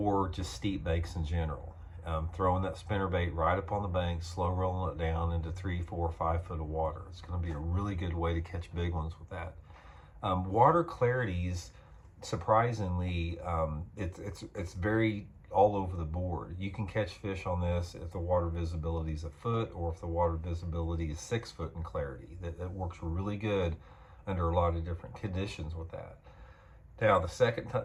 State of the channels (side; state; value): both; identical; correlation 1.00